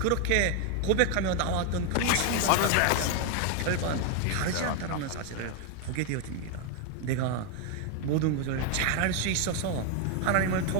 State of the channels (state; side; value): different; both; correlation 0.01